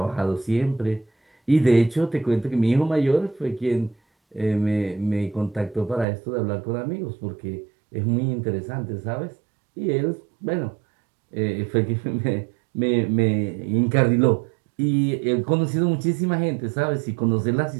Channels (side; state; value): left; drops out; at 6.1 s